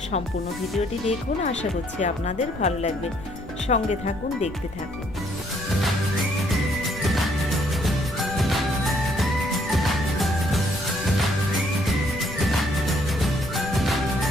সম্পূর্ণ ভিডিওটি দেখুন, আশা করছি আপনাদের ভালো লাগবে। সঙ্গে থাকুন, দেখতে থাকুন।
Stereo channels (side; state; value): left; noise; rumble, 14 dB below the sound